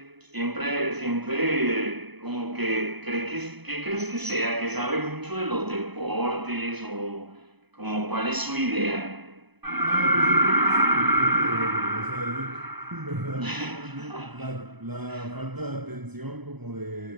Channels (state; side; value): late; left; 0.99 ms